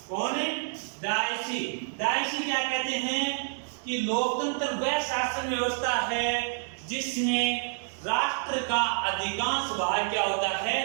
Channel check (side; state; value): left; silent; digital silence